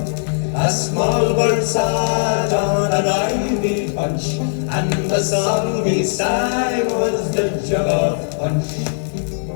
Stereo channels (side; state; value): right; silent; 63 dB below the other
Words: A small bird sat on an ivy bunch, and the song he sang was the Jug of Punch.